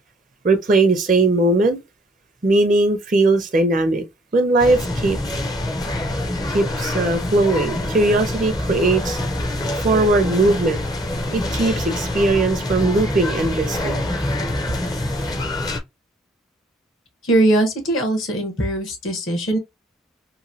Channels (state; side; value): normal; both; correlation 0.61